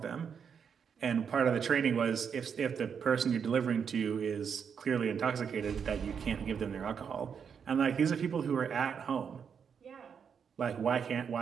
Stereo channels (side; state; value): left; quieter; 7.0 dB